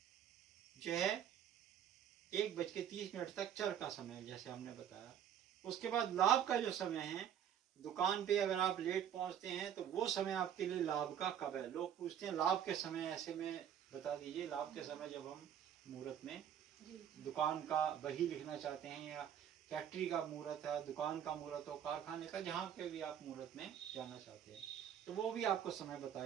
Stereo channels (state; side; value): quieter; left; 9.5 dB